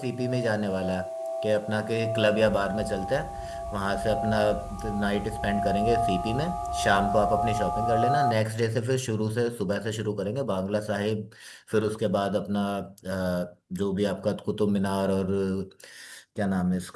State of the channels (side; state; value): both; identical; correlation 1.00